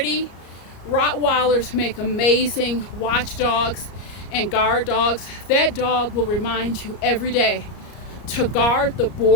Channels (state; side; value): late; right; 34 ms